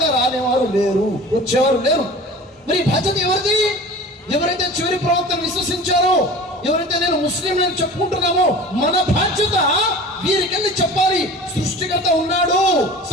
రానేవారు లేరు, వచ్చేవారు లేరు. మరి బాధ్యత ఎవరిది? ఎవరైతే చివరి ప్రవక్తను విశ్వసించారో, ఎవరైతే నేను ముస్లిం నేను చెప్పుకుంటున్నామో, మన బాధ్యత వీరికెళ్ళి చెప్పాలి, సృష్టికర్త ఉన్నాడు,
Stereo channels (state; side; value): normal; both; correlation 0.39